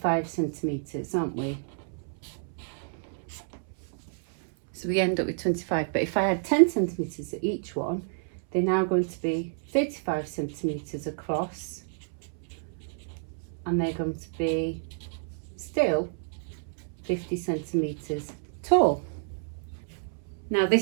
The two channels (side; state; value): left; silent; 58 dB below the other